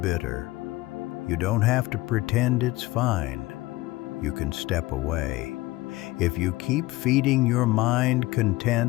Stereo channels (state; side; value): quieter; right; 19.6 dB